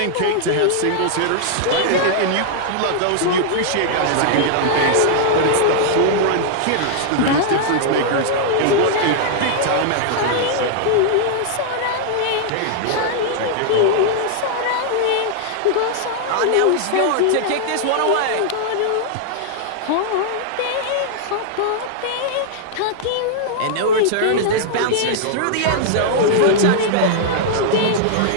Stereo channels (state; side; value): different; both; correlation -0.01